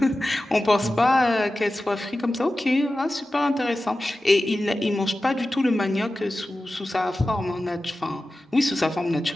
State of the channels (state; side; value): normal; both; correlation 0.94